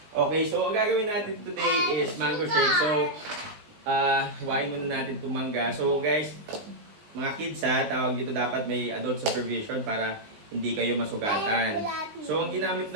Okay, so ang gagawin natin today is mango shake. So, hiwain muna natin itong mangga. So, guys, mga kids ha, tawag dito dapat may adult supervision para hindi kayo masugatan. So, ang ginamit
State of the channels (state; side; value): late; left; 19 ms